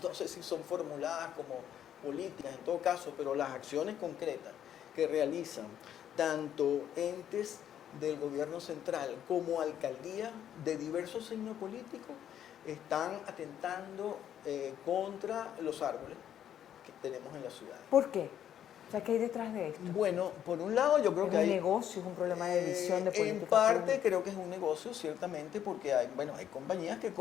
si son formuladas como políticas en todo caso, pero las acciones concretas que realizan tanto entes del gobierno central como alcaldías de diversos signos políticos están atentando contra los árboles que tenemos en la ciudad. ¿Por qué? O sea, ¿qué hay detrás de esto? Bueno, por un lado yo creo que hay... ¿Es un negocio, es un problema de visión de política en parte pública? creo que es un negocio, ciertamente, porque hay compañías que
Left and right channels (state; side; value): quieter; right; 10.1 dB